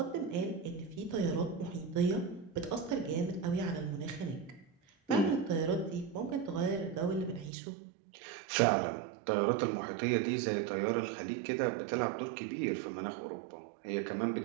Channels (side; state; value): left; drops out; at 7.5 s